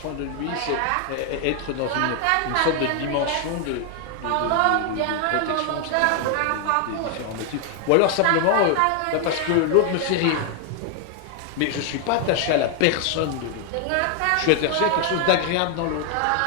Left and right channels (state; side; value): different; both; correlation 0.00